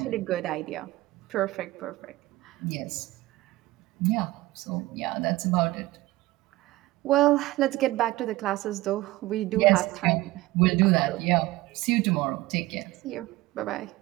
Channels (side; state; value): left; quieter; 18.6 dB